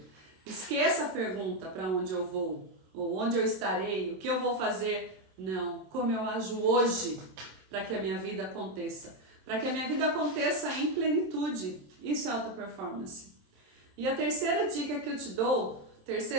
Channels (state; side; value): late; left; 27 ms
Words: Esqueça a pergunta para onde eu vou, ou onde eu estarei, o que eu vou fazer. Não, como eu ajo hoje para que a minha vida aconteça. Para que a minha vida aconteça em plenitude. Isso é alta performance. E a terceira dica que eu te dou